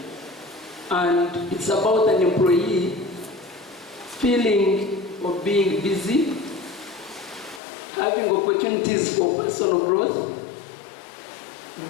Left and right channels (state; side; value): drops out; right; at 7.6 s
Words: and it's about an employee feeling of being busy, having opportunities for personal growth,